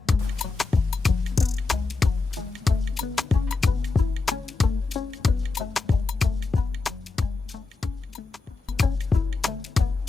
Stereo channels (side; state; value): right; quieter; 3.9 dB